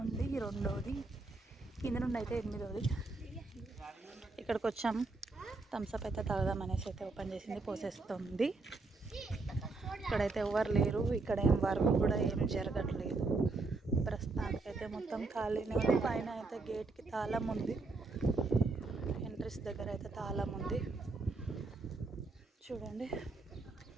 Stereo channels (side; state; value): left; quieter; 3.6 dB